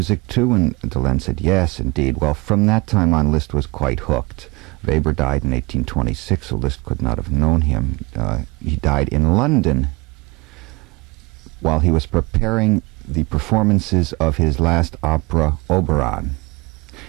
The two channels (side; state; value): left; quieter; 24.7 dB